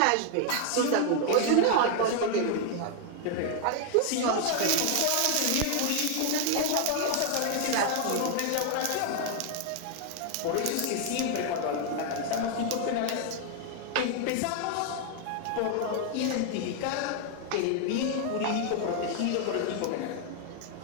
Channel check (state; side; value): different; both; correlation 0.00